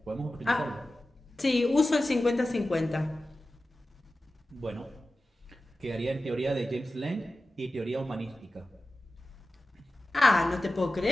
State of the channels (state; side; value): normal; both; correlation 0.95